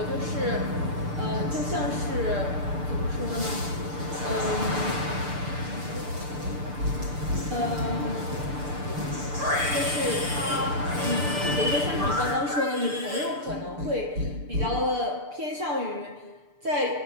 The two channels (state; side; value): late; left; 6.8 ms